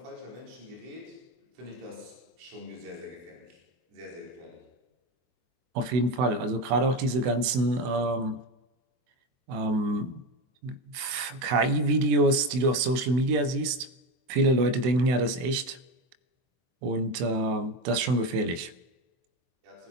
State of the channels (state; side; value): late; left; 24 ms